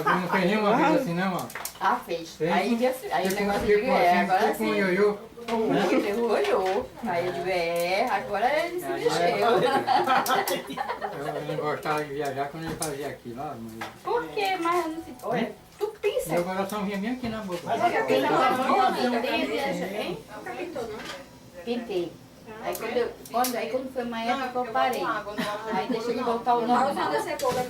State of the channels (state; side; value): identical; both; correlation 1.00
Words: não fez nenhuma vez assim, não, ó. Ah, fez. Fez? Aí o negócio de Tipo assim, agora tipo um sim. ioiô. Ele olhou. Aí eu digo, agora ele se mexeu. Eu não gostava de viajar quando ele fazia aqui, lá. Por quê? Mas eu não sei. Olha, tu pensa. Meu coração vinha bem aqui na boca. Pintei. Aí quando foi uma época eu parei. Aí deixa ele voltar ao normal.